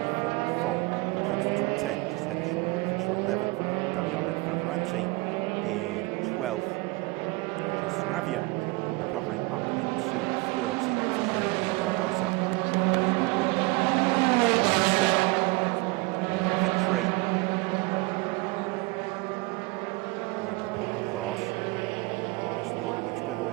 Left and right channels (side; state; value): left; quieter; 24.5 dB